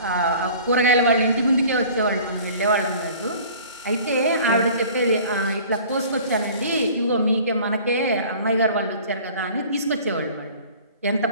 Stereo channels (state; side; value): inverted; both; correlation -0.47